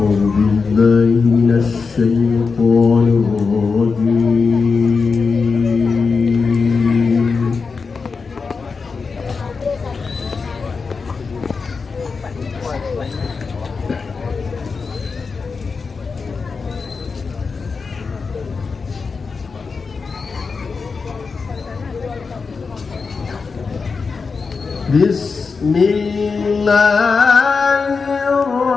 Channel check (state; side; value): quieter; right; 4.8 dB